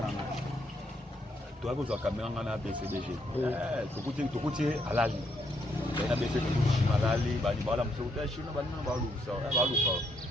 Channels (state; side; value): normal; both; correlation 0.74